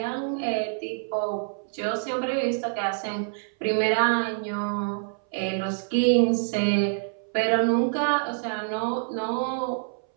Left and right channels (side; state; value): left; silent; 60 dB below the other